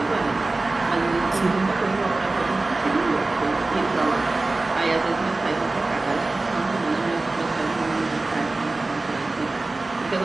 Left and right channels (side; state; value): left; quieter; 3.2 dB